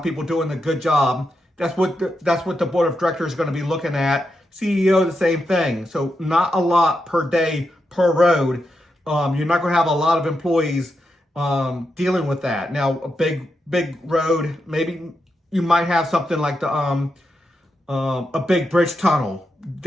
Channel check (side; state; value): both; normal; correlation 0.85